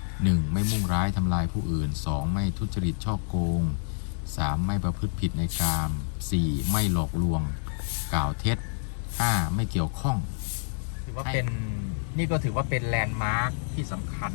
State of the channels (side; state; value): right; silent; digital silence